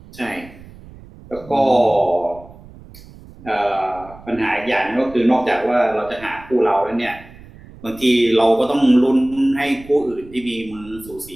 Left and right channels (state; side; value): noise; right; rumble, 20 dB below the sound